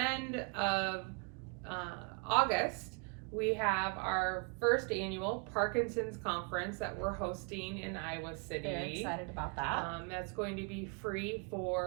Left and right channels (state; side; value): quieter; left; 36.7 dB